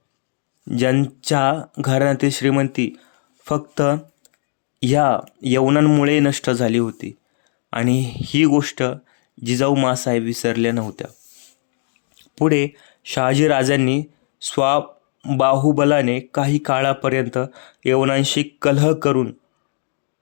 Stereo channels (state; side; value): silent; right; digital silence